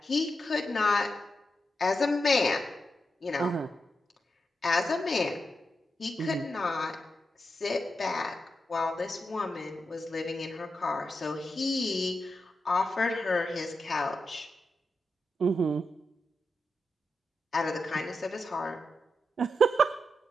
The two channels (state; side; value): normal; both; correlation 0.87